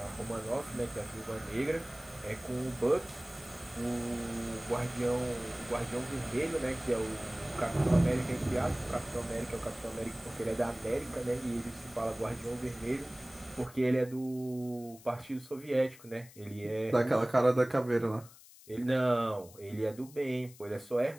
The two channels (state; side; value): noise; left; hiss, 21 dB below the sound